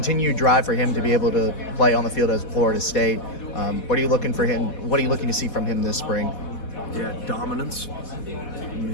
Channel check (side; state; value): right; late; 4.1 ms